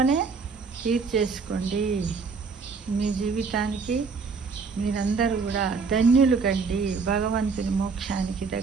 తీర్చేసుకోండి. మీ జీవితానికి మీరందరూ కూడా ధన్యులు కండి. భగవంతుని మోక్షానికి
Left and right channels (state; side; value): quieter; left; 4.9 dB